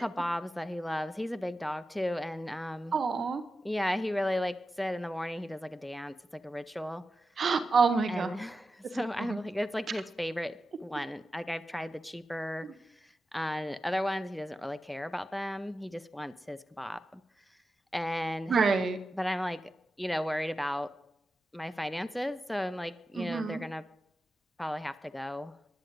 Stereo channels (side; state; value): both; normal; correlation 0.91